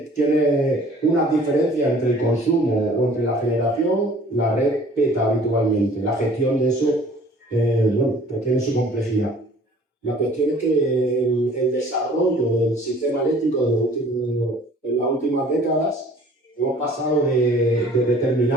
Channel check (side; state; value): both; normal; correlation 0.51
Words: diferencias entre el consumo o entre la generación, la red peta habitualmente. La gestión de eso pues tiene su complejidad. La cuestión es que el desarrollo del sistema eléctrico en las últimas décadas hemos pasado de